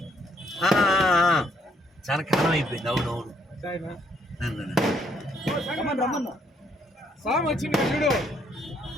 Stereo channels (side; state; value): both; normal; correlation 0.69